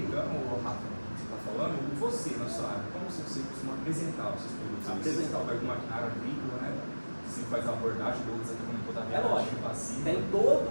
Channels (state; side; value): inverted; both; correlation -1.00